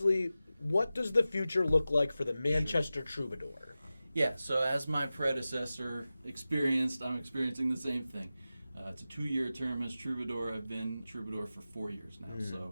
what does the future look like for the Manchester Troubadour? Yeah, so as my predecessor experienced, I'm experiencing the same thing. It's a 2-year term as Troubadour. I've been Troubadour for 4 years now.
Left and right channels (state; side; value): inverted; both; correlation -0.95